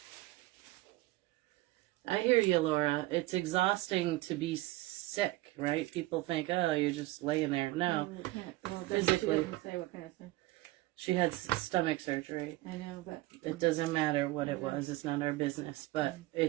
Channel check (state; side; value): quieter; left; 18.7 dB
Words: I hear you, Laura. It's exhausting to be sick, right? People think, oh, you're just laying there. No, physically. She doesn't say what kind of stuff. She had stomach surgery. I know, but... It doesn't matter what it was. It's not our business. But